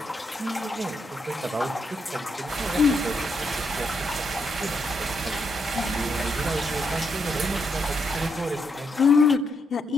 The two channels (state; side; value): normal; both; correlation 0.79